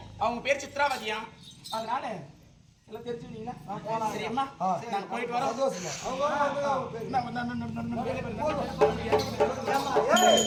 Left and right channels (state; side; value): identical; both; correlation 1.00